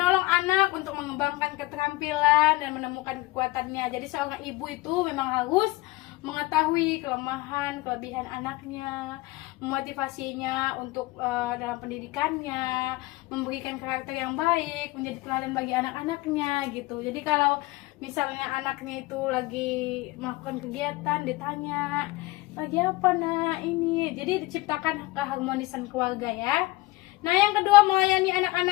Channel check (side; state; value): right; quieter; 20.5 dB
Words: anak untuk mengembangkan keterampilan dan menemukan kekuatannya. Jadi seorang ibu itu memang harus mengetahui kelemahan, kelebihan anaknya, memotivasinya untuk dalam pendidikannya, memberikan karakter yang baik, menjadi teladan bagi anak-anaknya gitu. Jadi kalau misalnya anaknya itu lagi melakukan kegiatan, ditanya, lagi apa nak ini? Jadi diciptakan keharmonisan keluarga ya. Nah, yang kedua, melayani